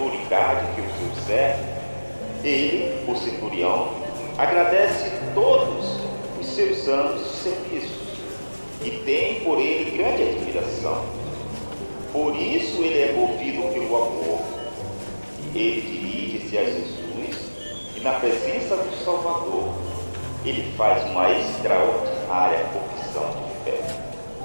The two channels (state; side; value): inverted; both; correlation -1.00